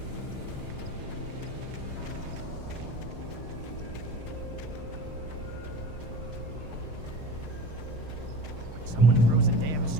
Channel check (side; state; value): left; late; 6.6 ms